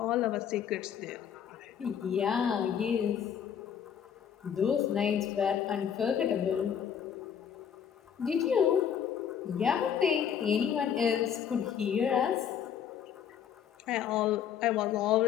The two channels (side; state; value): right; quieter; 8.4 dB